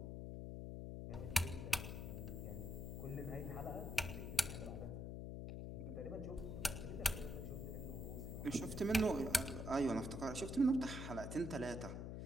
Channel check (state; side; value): noise; left; hum, 5 dB below the sound